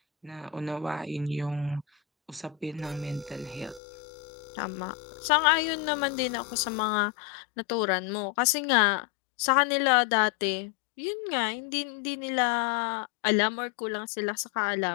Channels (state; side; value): drops out; right; at 3.8 s